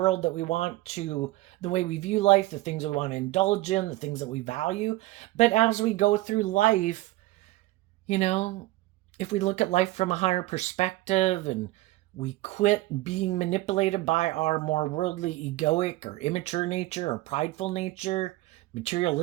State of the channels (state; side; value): quieter; left; 18.2 dB